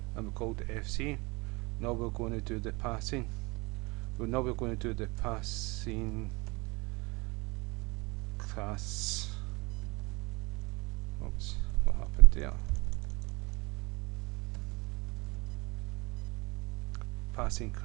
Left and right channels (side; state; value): left; quieter; 26.0 dB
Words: and we called it FC. Now we're going to do the passing. Now we're going to do the passing class. Oops, what happened there? Passing